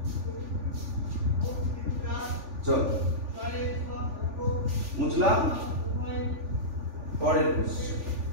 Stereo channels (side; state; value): left; late; 3.4 ms